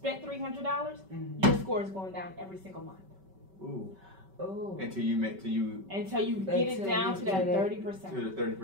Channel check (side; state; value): left; late; 5.2 ms